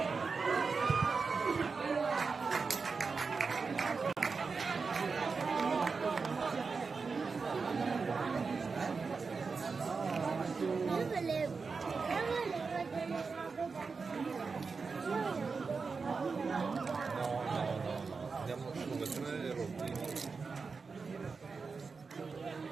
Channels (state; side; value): quieter; left; 4.8 dB